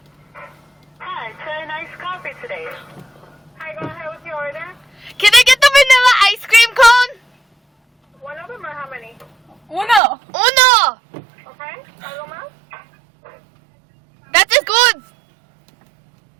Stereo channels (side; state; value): left; drops out; at 10.0 s